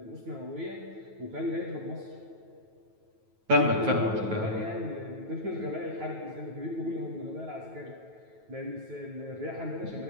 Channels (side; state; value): left; late; 9.2 ms